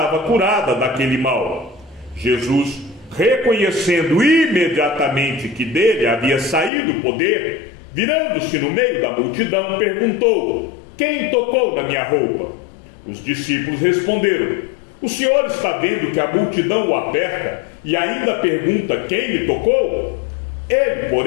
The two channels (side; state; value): right; drops out; at 6.7 s